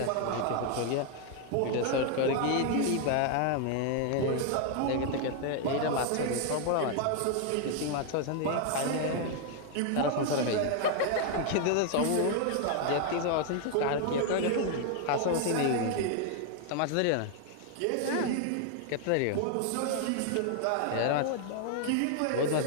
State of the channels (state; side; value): different; both; correlation 0.00